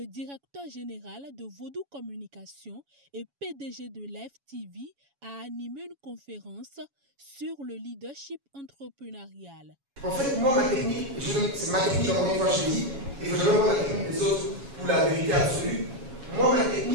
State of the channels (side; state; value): left; late; 7.2 ms